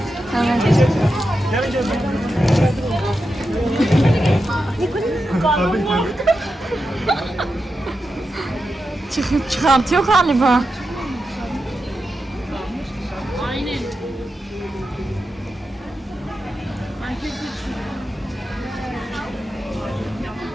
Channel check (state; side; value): normal; both; correlation 0.89